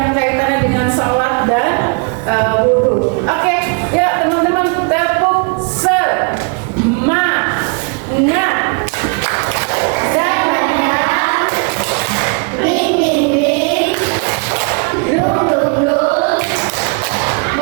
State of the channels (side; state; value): left; quieter; 35.5 dB